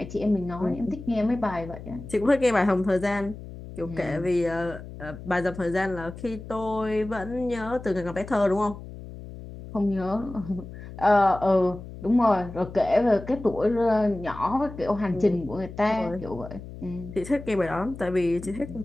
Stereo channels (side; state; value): left; noise; hum, 13 dB below the sound